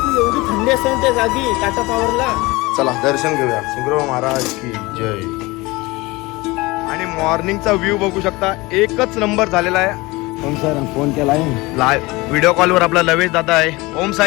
एवढी थंडी असते ना त्या जागी टाटा पॉवरला. चला दर्शन घेऊया शिंगरोबा महाराज की जय. आणि मॉर्निंगचा व्ह्यू बघू शकता, एकच नंबर झालेला आहे. ओम साईराम फोन केलाय लाईव्ह व्हिडिओ कॉलवर आपला लवेश दादा आहे. ओम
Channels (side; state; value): right; quieter; 22.4 dB